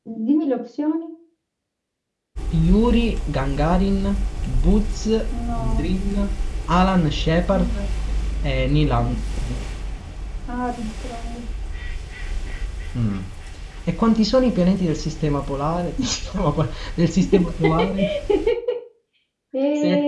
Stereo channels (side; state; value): both; identical; correlation 1.00